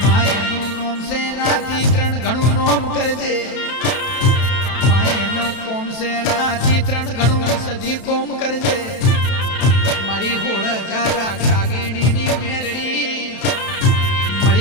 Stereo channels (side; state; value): right; late; 32 ms